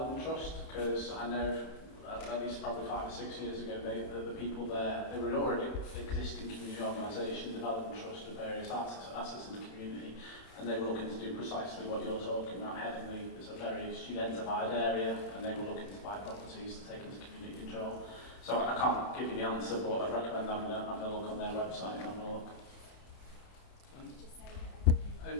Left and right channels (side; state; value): right; late; 31 ms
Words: Trust, because I know at least probably 5 or 6 years ago, the people there, they were already existing community organisation, development trust of various assets in the community, and they were looking to do precisely what you're talking about. Headingley is a very studentified area, and they were looking to buy properties to take into community control. So I can't give you the answer, but I'd recommend having a look on their website and having a look.